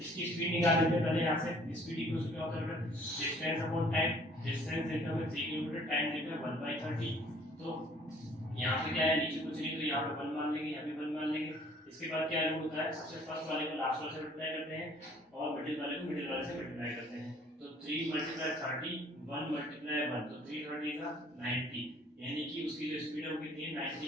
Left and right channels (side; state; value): both; normal; correlation 0.56